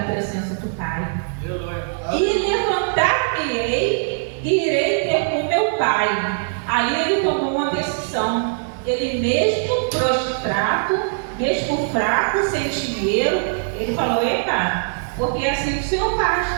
presença do Pai. E levantar-me-ei e irei ter com meu Pai. Aí ele tomou uma decisão. Ele mesmo prostrado, mesmo fraco, sem dinheiro, ele falou, eita, porque assim o Senhor faz.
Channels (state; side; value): silent; left; digital silence